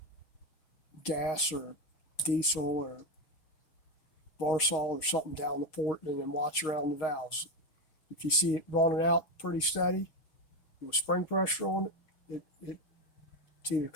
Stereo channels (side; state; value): right; late; 6.4 ms